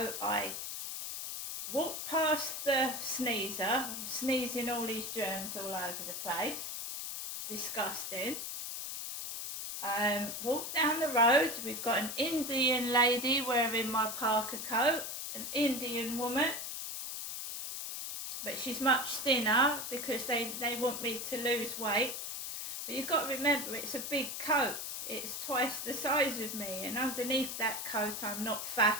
I walked past the sneezer, sneezing all these germs all over the place. Disgusting. Walked down the road. We've got an Indian lady wearing my parka coat, an Indian woman. But she's much thinner because they want me to lose weight. But you've got to remember, it's a big coat. It's twice the size of me, and underneath that coat I'm not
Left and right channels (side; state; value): left; noise; hiss, 5 dB below the sound